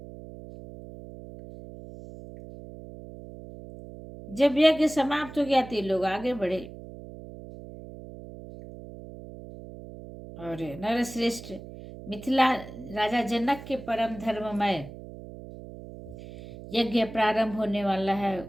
जब यज्ञ समाप्त हो गया तो लोग आगे बढ़े और नरश्रेष्ठ मिथिला राजा जनक के परम धर्ममय यज्ञ प्रारंभ होने वाला है,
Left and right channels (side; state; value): right; noise; hum, 14 dB below the sound